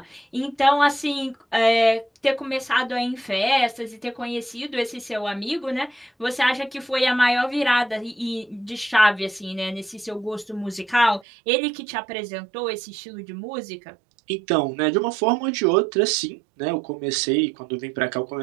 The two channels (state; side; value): drops out; left; at 11.2 s